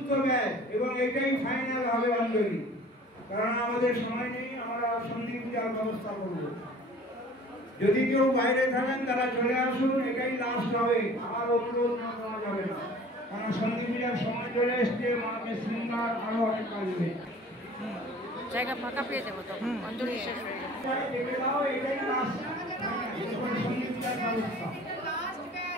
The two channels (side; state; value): both; normal; correlation 0.47